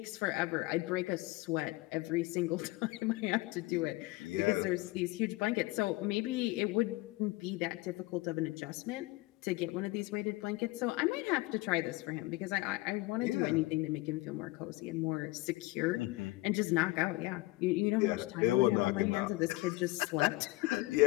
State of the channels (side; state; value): right; quieter; 20.5 dB